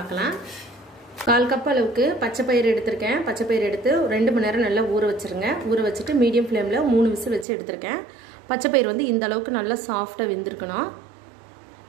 1/4 கப் அளவுக்கு பச்சை பயிறு எடுத்துர்க்கேன். பச்சை பயிறு எடுத்து 2 மணி நேரம் நல்லா ஊற வச்சிருங்க. ஊற வச்சிட்டு மீடியம் ஃப்ளேம்ல 3 விசில் வச்சு எடுத்துர்க்கேன். பச்சை பயிறு வந்து இந்த அளவுக்கு நல்லா சாஃப்ட்டா வெந்திருக்கணும்.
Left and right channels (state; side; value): drops out; left; at 7.5 s